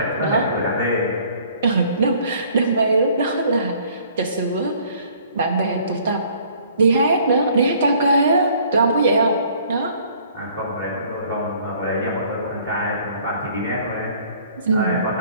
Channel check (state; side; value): inverted; both; correlation -0.57